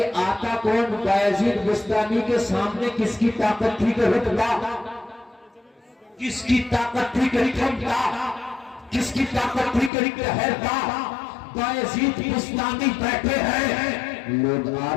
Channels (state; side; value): drops out; right; at 9.9 s